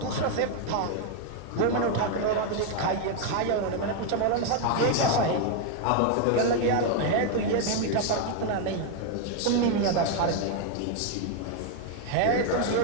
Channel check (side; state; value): both; different; correlation 0.00